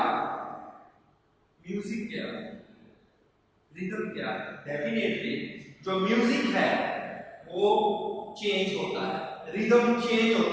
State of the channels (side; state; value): both; identical; correlation 1.00